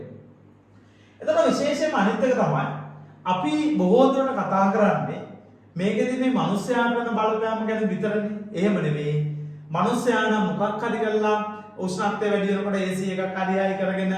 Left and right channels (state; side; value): identical; both; correlation 1.00